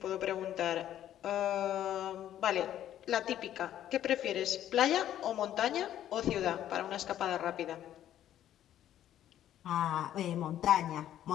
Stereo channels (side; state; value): right; quieter; 11.6 dB